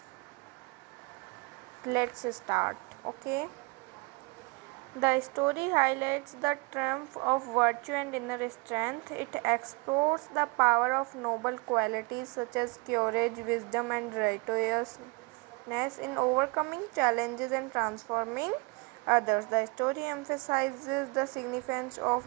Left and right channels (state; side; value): quieter; left; 28.9 dB